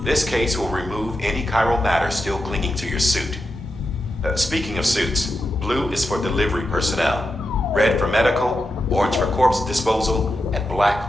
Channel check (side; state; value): both; normal; correlation 0.88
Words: This case will remove any chiral matter still clinging to your suit. Speaking of suits, blue is for delivery personnel, red for medical, orange for corpse disposal, and black